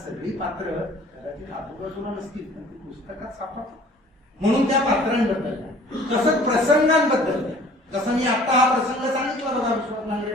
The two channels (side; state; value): both; normal; correlation 0.51